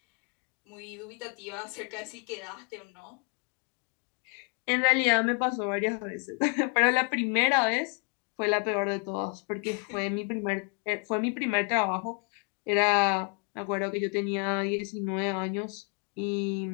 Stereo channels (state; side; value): quieter; right; 36.0 dB